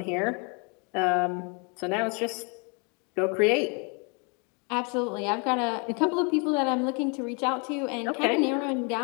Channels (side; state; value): right; quieter; 34.3 dB